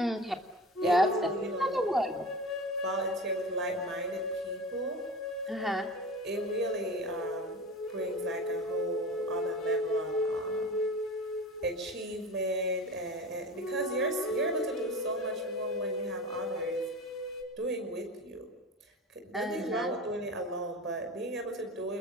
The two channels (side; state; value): both; normal; correlation 0.32